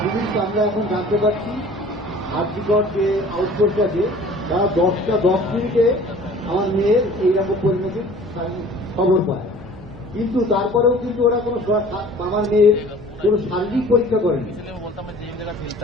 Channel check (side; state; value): right; noise; hum, 18 dB below the sound